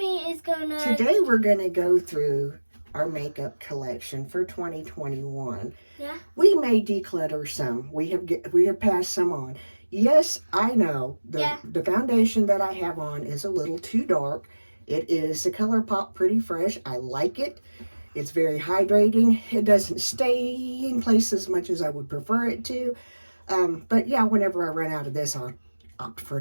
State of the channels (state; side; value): inverted; both; correlation -1.00